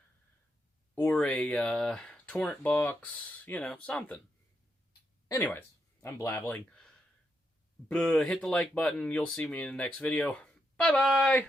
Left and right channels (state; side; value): normal; both; correlation 0.83